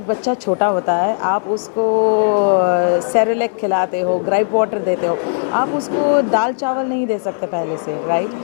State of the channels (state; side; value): silent; right; digital silence